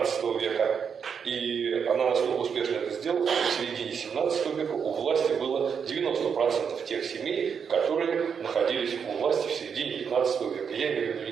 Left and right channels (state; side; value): quieter; left; 6.8 dB